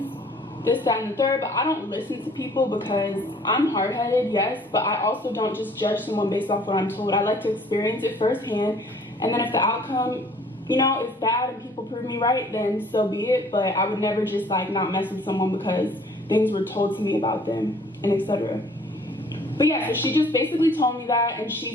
this, that, and the third. But I don't listen to people because I'm hard-headed, yes. But I also don't just judge someone based off what I'm told. I like to experience it firsthand. And then if the outcome, you know, is bad and people prove me right, then so be it. But I would never just, like, not mess with someone because things were told to me about them and etc. But yeah, so she just basically told me that, and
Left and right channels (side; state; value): both; normal; correlation 0.56